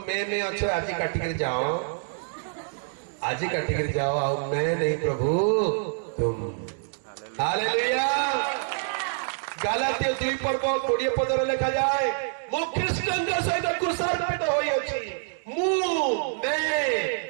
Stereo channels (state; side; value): silent; left; digital silence